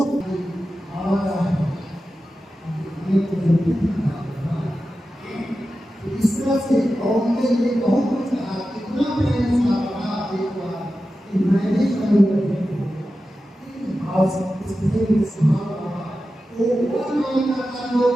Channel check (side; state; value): both; normal; correlation 0.92